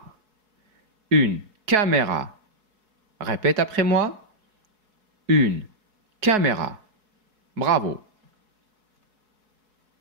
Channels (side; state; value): left; late; 4.7 ms